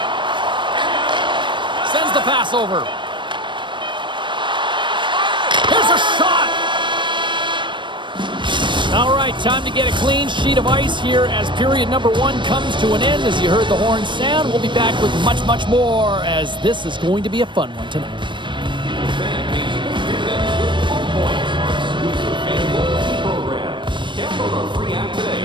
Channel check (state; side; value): late; left; 0.23 ms